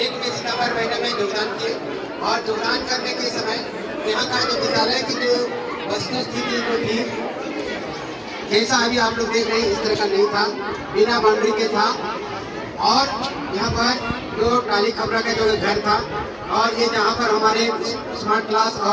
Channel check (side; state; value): both; identical; correlation 1.00